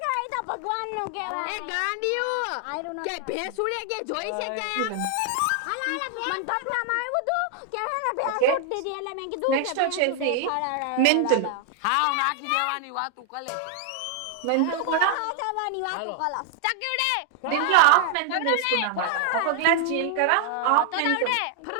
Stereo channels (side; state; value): both; different; correlation 0.00